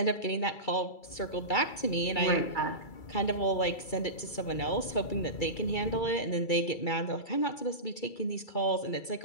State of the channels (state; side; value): late; right; 2.3 ms